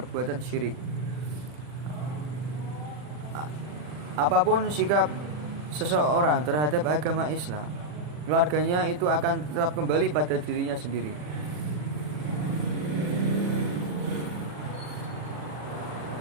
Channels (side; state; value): left; late; 40 ms